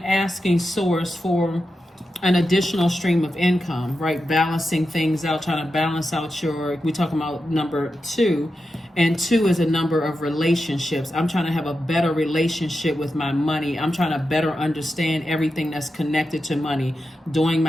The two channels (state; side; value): normal; both; correlation 0.89